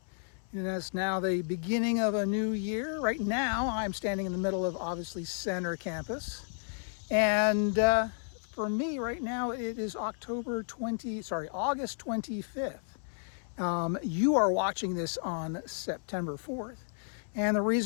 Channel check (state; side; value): silent; right; 56 dB below the other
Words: And it's now the beginning of a new year. Right now, I'm standing in the middle of, obviously, Center Campus. And for me, right now, it is August 25th. You are watching this on September 4th. And the